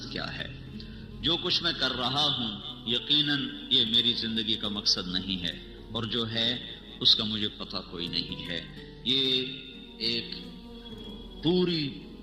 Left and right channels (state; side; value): identical; both; correlation 1.00